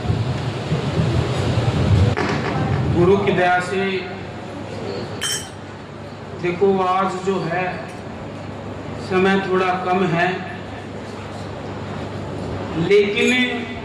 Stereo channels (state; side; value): identical; both; correlation 1.00